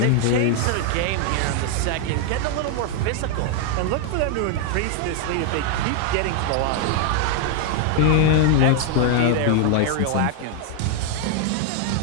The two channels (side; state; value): both; different; correlation 0.00